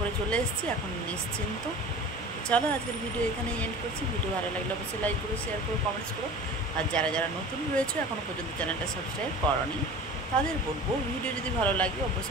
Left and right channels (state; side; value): normal; both; correlation 0.38